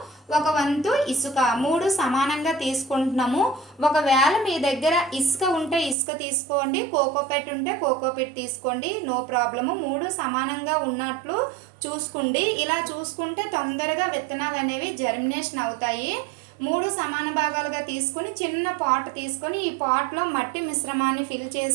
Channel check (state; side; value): drops out; left; at 6.0 s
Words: ఒక వంతు ఇసుక, 3 సమానంగా తీసుకుంటున్నాము. ఒకవేళ మీ దగ్గర ఇసుక ఉంటే ఇసుక తీసుకోండి, కోకోపెట్ ఉంటే కోకోపెట్ తీసుకోండి, నో ప్రాబ్లము. 3 సమానంగా ఉన్నట్లు చూసుకోండి. ఇలా చూసుకుంటే తొందరగా విత్తనాలు అనేవి జర్మినేషన్ అవుతాయి. 3 సమాన భాగాలుగా తీసుకొని చిన్న పాట్ తీసుకొని ఈ పాట్లో మట్టి మిశ్రమాన్ని ఫిల్